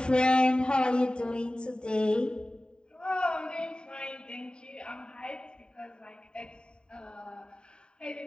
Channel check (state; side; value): late; right; 0.049 ms